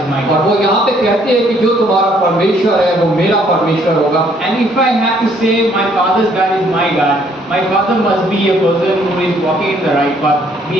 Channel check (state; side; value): normal; both; correlation 0.65